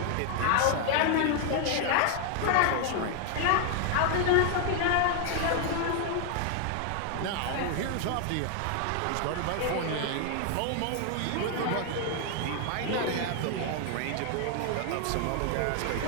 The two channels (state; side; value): different; both; correlation 0.00